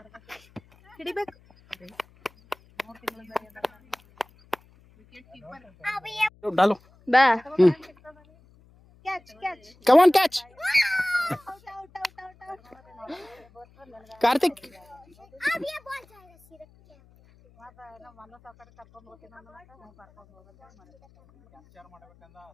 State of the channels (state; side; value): noise; left; hum, 29 dB below the sound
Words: ಹಿಡಿಬೇಕು. डालो ಬಾ हम्म catch catch come on catch Karthik अब ये बॉल जाएगा सिर्फ